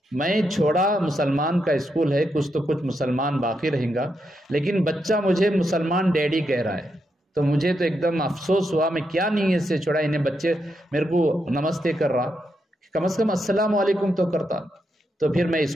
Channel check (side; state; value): both; normal; correlation 0.82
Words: میں چھوڑا مسلمان کا اسکول ہے، کچھ تو کچھ مسلمان باقی رہیں گا، لیکن بچہ مجھے مسلمان ڈیڈی کہہ رہا ہے، تو مجھے تو ایک دم افسوس ہوا، میں کیا نیت سے چھوڑا، انہیں بچے میرے کو نمستے کر رہا، کم از کم السلام علیکم تو کرتا۔ تو پھر میں